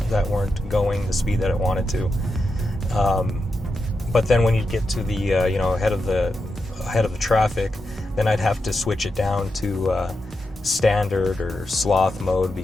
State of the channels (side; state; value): both; normal; correlation 0.88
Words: that weren't going the speed that it wanted to. But then when you get to the, ahead of the traffic, then I'd have to switch it down to standard or sloth mode